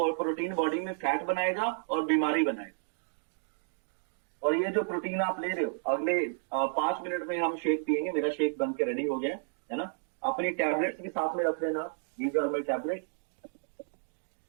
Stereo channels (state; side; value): silent; left; digital silence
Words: प्रोटीन बॉडी में फैट बनाएगा और बीमारी बनाएगा। और ये जो प्रोटीन आप ले रहे हो, अगले 5 मिनट में हम शेक पियेंगे। मेरा शेक बन के रेडी हो गया है ना। अपनी टैबलेट्स भी साथ में रख लेना, these are my tablet.